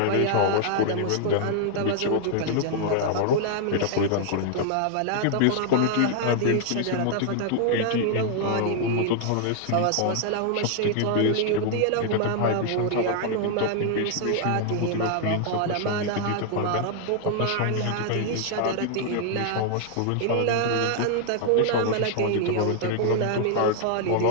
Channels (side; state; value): both; different; correlation -0.01